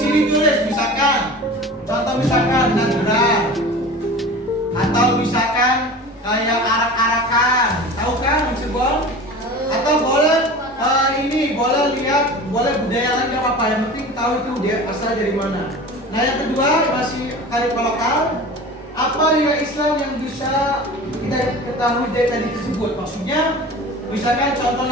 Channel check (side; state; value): both; normal; correlation 0.37